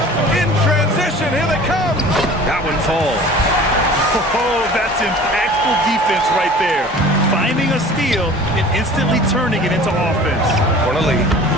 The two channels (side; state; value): both; normal; correlation 0.44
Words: In transition, here they come. That one falls. Oh, that's impactful defense right there. Finding a steal and instantly turning it into offense. Corneli,